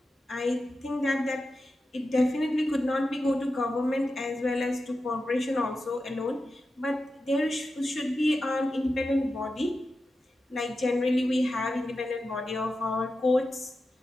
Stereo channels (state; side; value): normal; both; correlation 0.91